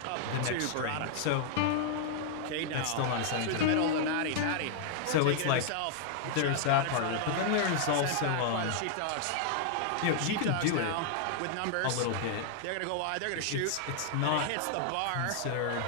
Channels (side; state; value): both; different; correlation -0.01